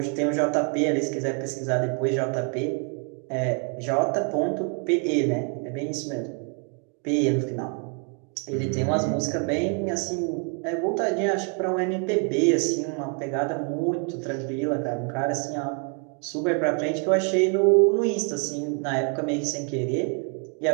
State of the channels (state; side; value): quieter; left; 38.1 dB